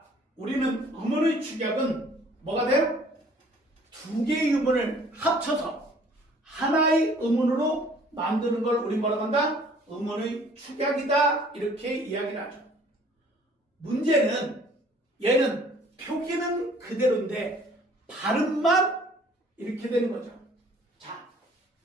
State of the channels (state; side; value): normal; both; correlation 0.55